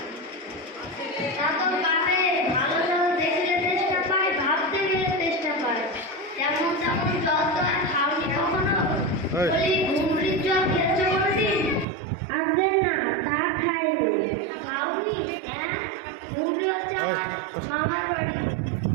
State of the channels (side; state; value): left; drops out; at 11.9 s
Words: ভালো জল দেখলে চেষ্টা পায়, ভাবতে গেলে চেষ্টা পায়। যেমন তেমন জল তো আর খাওনি কখনো। বলি, ঘুমরির জল খেয়েছো কোনোদিন? আগে না, তা খাইনি। খাওনি? হ্যাঁ, ঘুমরি হচ্ছে আমার মামার বাড়ি,